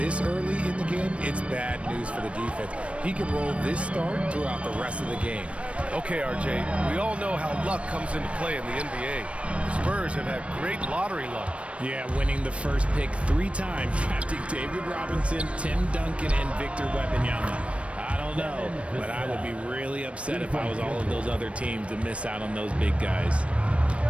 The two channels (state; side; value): late; left; 0.062 ms